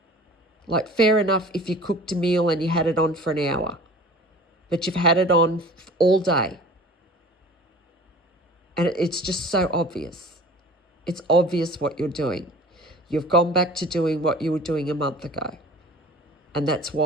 Like, fair enough if you cooked a meal and you had it on for an hour, but you've had it on all day. And it's just so obvious. It's obvious what you're doing. You've gone back to doing what you were doing a month ago. And that's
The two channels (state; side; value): normal; both; correlation 0.43